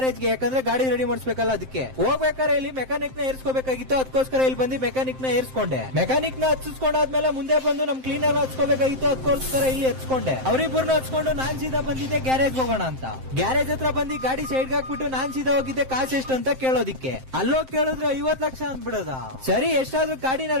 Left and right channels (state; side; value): late; left; 7.7 ms